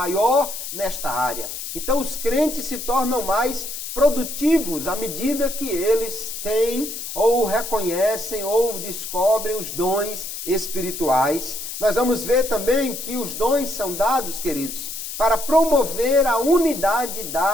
nesta área. Então, os crentes se tornam mais produtivos à medida que eles têm ou reconhecem ou descobrem os dons espirituais. Nós vamos ver também que os dons são dados, queridos, para promover a unidade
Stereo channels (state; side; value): noise; left; hiss, 7 dB below the sound